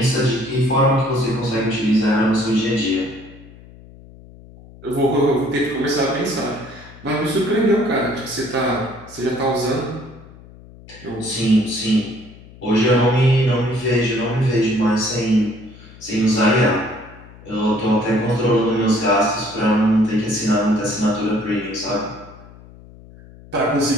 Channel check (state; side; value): noise; left; hum, 21 dB below the sound